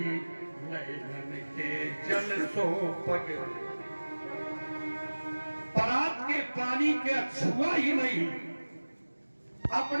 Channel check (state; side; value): inverted; both; correlation -1.00